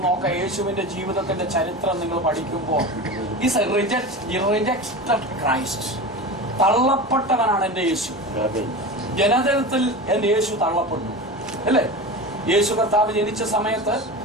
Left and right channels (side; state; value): both; normal; correlation 0.28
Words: നോക്കുക. യേശുവിന്റെ ജീവിതത്തിന്റെ ചരിത്രം നിങ്ങൾ പഠിക്കുമ്പോൾ ഈസ് റിജക്റ്റഡ് ക്രൈസ്റ്റ്. തള്ളപ്പെട്ടവനാണ് എൻ്റെ യേശു. ജനജനത്തിൽ എൻ്റെ യേശു തള്ളപ്പെട്ടു അല്ലേ? യേശു കർത്താവ് ജനിച്ച സമയത്ത്